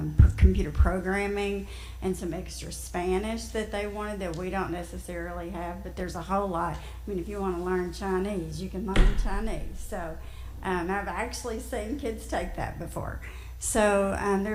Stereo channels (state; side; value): identical; both; correlation 1.00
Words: computer programming and some extra Spanish that they wanted that we don't necessarily have, but there's a whole lot. I mean, if you want to learn Chinese, you can learn Chinese. So I've actually seen kids take that before. So